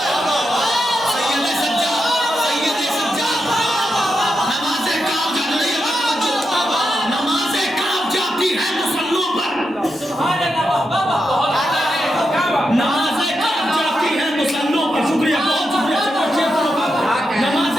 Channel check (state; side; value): normal; both; correlation 0.86